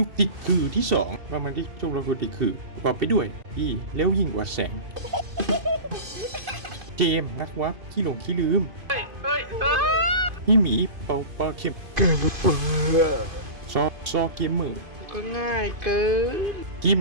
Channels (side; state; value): left; late; 2.5 ms